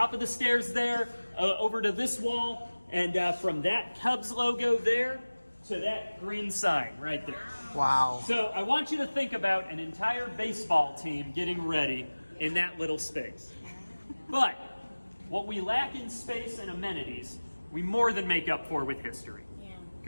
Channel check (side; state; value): both; inverted; correlation -1.00